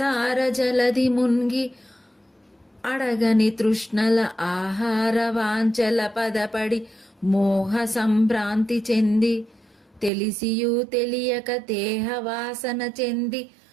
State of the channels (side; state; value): left; drops out; at 10.1 s